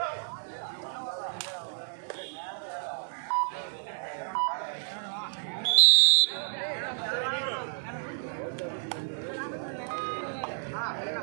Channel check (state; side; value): silent; left; digital silence